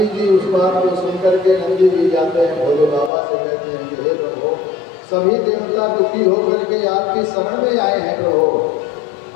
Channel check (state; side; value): drops out; right; at 3.1 s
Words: जी उस बात को सुनकर के नंदी जी जाते हैं भोले बाबा से, कहते हैं कि हे प्रभु, सभी देवता दुखी होकर के आपकी शरण में आए हैं प्रभु,